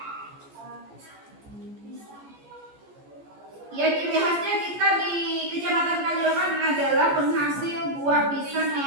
Ya, ciri khasnya kita di Kecamatan Kaliorang adalah penghasil buah pisang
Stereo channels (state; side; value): late; left; 14 ms